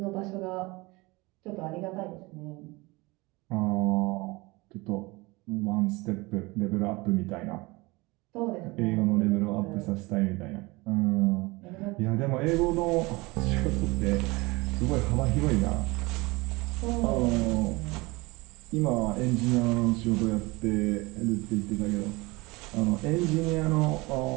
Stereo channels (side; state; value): left; quieter; 23.6 dB